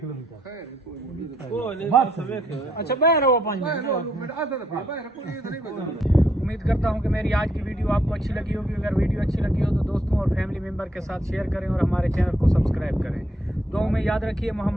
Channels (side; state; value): both; normal; correlation 0.73